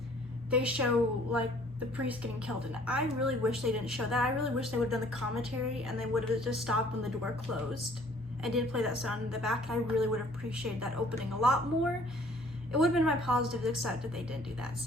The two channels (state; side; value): normal; both; correlation 0.57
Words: they show like the priest getting killed, and I really wish they didn't show that. I really wish they would have done the commentary and they would have just stopped when the door closed and didn't play that sound in the back. I really would have appreciated that opening a lot more. It would have been my positives, except that they didn't do that,